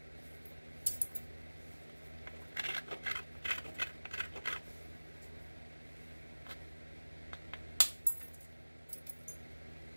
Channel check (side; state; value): both; inverted; correlation -1.00